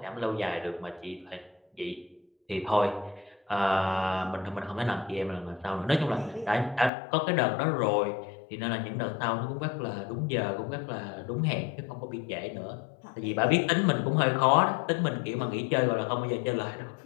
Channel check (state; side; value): drops out; right; at 6.9 s